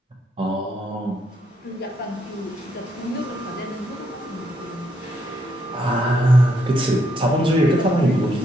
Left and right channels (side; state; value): both; normal; correlation 0.75